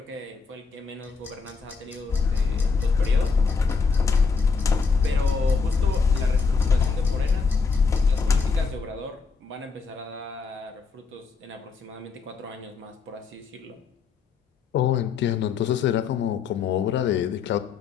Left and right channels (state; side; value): quieter; right; 5.0 dB